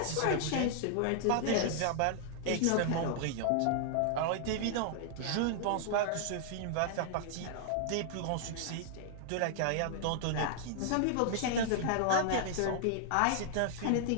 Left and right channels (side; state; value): both; different; correlation -0.01